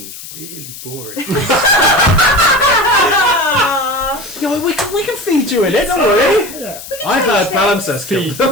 really boring. No, we can feed you in it, don't worry. Yeah. I've heard palimpsest Feed,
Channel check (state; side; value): noise; left; hiss, 14 dB below the sound